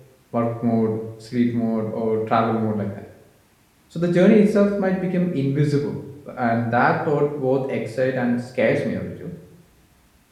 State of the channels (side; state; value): both; identical; correlation 1.00